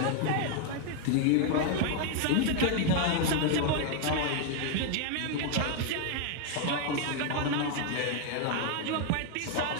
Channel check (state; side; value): different; both; correlation 0.01